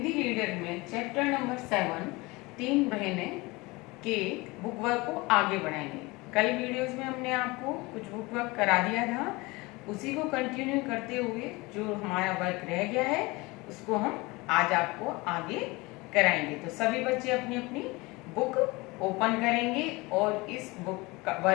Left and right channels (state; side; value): quieter; right; 23.5 dB